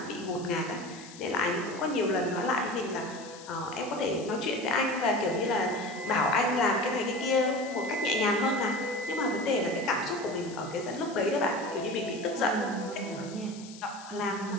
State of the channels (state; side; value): noise; left; hiss, 18 dB below the sound